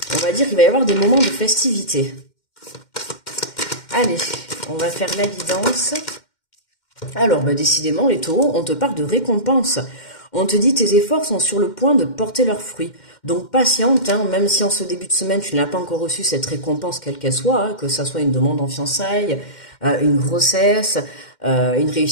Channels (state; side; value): late; right; 2.1 ms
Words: va dire qu'il va y avoir des moments de festivité. Allez, on va faire la guidance. Alors, décidément, les taureaux, on te parle de récompense. On te dit tes efforts sont sur le point de porter leurs fruits. Donc patiente, hein, même si en ce début de semaine, tu n'as pas encore reçu cette récompense, quelle qu'elle soit, hein, que ça soit une demande en fiançailles, une grossesse, une